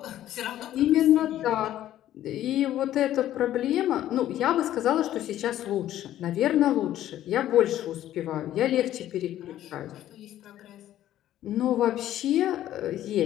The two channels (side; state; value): right; quieter; 12.7 dB